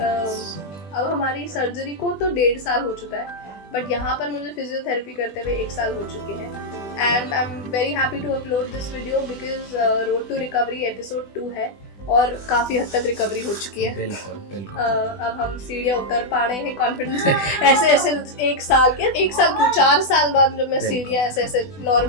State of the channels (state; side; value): late; right; 20 ms